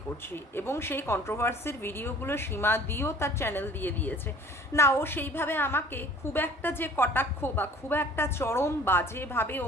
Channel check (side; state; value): both; normal; correlation 0.50